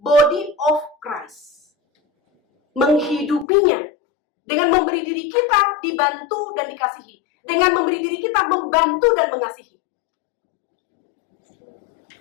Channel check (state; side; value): drops out; right; at 3.5 s